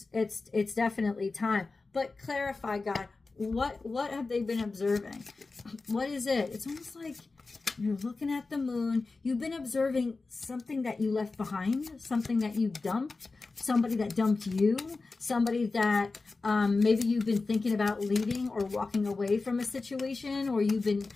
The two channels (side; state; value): right; quieter; 3.8 dB